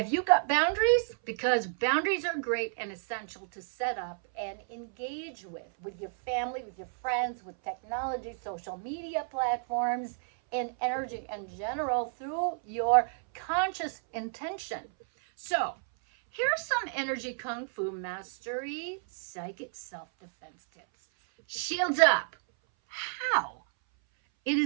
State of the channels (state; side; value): silent; left; 57 dB below the other